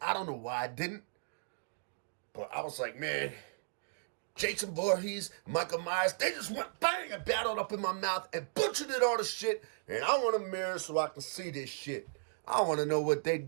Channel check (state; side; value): silent; left; digital silence